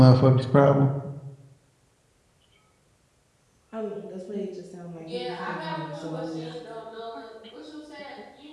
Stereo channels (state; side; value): identical; both; correlation 1.00